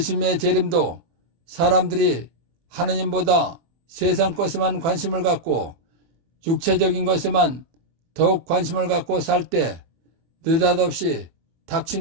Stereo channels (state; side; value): late; left; 24 ms